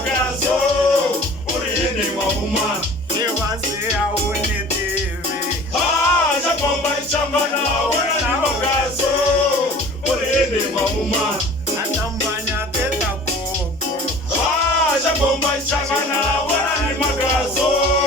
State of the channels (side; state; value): both; normal; correlation 0.44